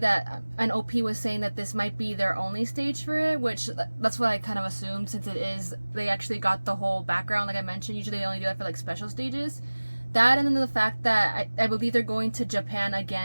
an OP was saying that this might be their only stage for it, which that's what I kind of assumed, since it is, they actually got the whole background like I mentioned. Usually they only do that for like special stages. That, and then the fact that I believe they're going to Japan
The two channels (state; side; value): inverted; both; correlation -1.00